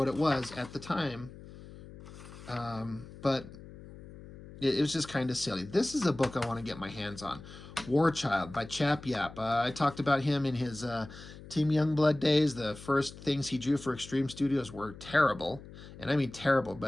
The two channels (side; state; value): left; noise; hum, 16 dB below the sound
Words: it was at the time. But it was just kind of silly. This is a book I want to get my hands on. War Child by Chap Yap. I talked about him in his Team Youngblood days. The first things he drew for Extreme Studios were terrible. And I mean terrible,